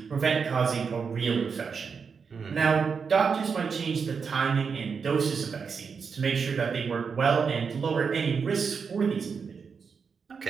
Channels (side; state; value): left; quieter; 5.8 dB